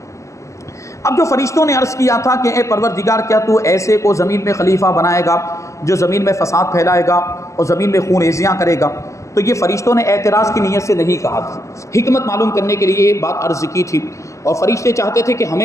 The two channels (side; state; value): right; late; 0.15 ms